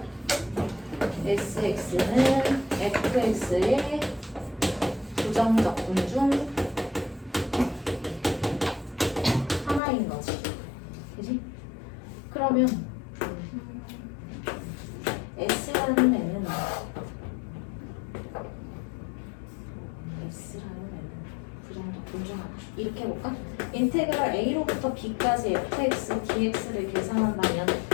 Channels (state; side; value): drops out; right; at 9.8 s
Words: sx는 fx의 부정적분 중 하나인 거지. 그지? 그러면 s라는 애는 부정적분 중 하나. 이렇게 해볼까? 인테그랄 a로부터 b까지 fx dx를 계산한다면